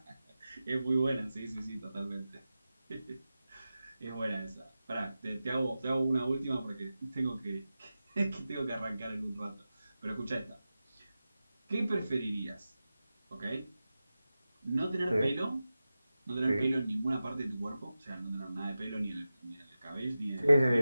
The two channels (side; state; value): both; inverted; correlation -0.94